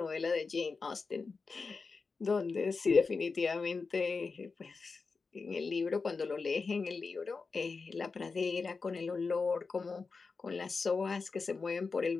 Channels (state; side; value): quieter; right; 4.5 dB